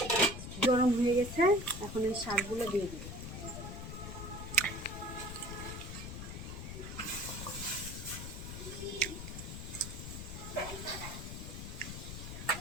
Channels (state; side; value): noise; left; rumble, 8 dB below the sound